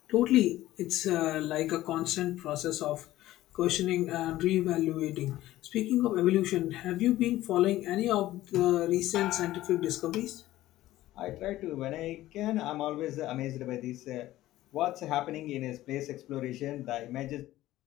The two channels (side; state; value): right; quieter; 15.4 dB